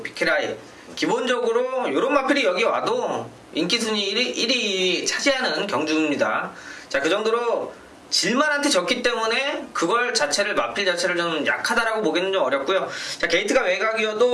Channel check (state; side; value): identical; both; correlation 1.00